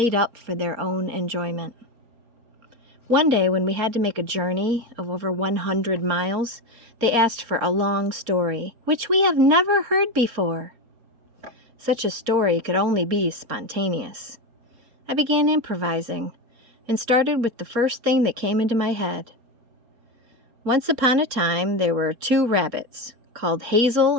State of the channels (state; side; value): late; left; 4.3 ms